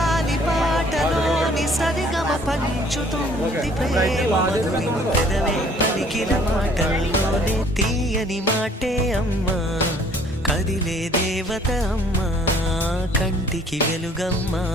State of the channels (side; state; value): both; normal; correlation 0.57